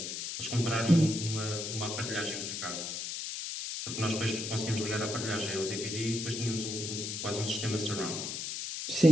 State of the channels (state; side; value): noise; left; hiss, 4 dB below the sound